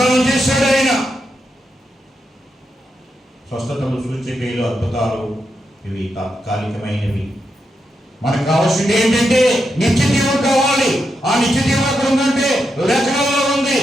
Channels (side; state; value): both; normal; correlation 0.85